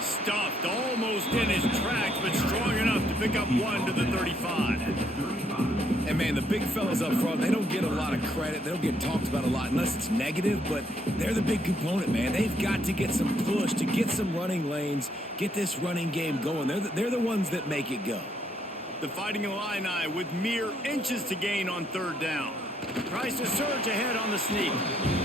Stuffed almost in his tracks, but strong enough to pick up 1 to the 35. And, man, the big fellas up front, they don't get a lot of credit. They don't get talked about a lot unless it's negative, but they're the big component, man. They've got to get some push, to get some running lanes, get this running game going. They're the ones that make it go. The Fighting Illini with mere inches to gain on 3rd down. Tries to surge ahead on the sneak.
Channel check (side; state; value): both; normal; correlation 0.71